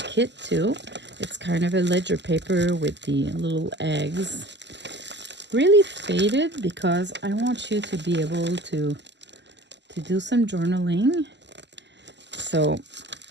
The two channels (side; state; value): left; late; 0.51 ms